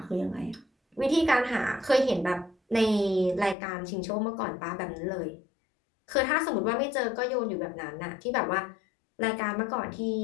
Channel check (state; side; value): drops out; right; at 3.6 s